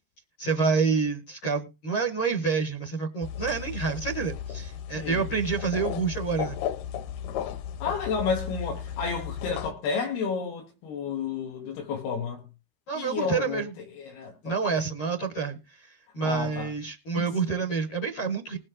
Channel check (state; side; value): late; right; 13 ms